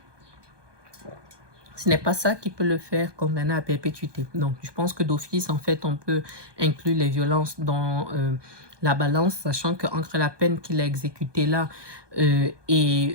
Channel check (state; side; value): late; left; 1.2 ms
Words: ce n'est pas ça qui peut le faire condamner à perpétuité. Donc, je pense que d'office, en fait, on peut inclure les violences dans la balance, sachant qu'entre la peine qu'il a exécutée là